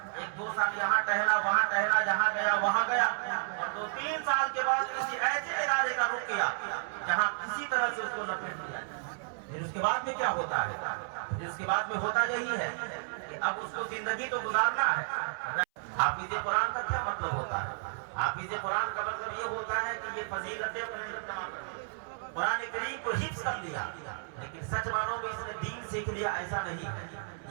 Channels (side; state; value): left; silent; 56 dB below the other